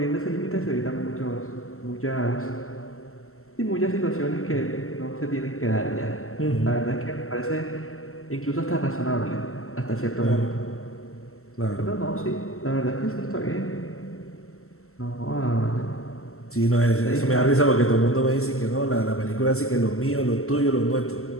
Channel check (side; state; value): right; late; 0.63 ms